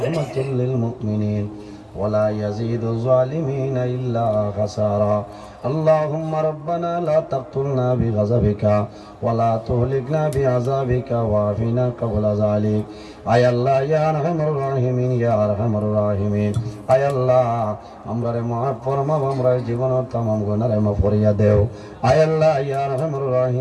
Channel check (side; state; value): both; identical; correlation 1.00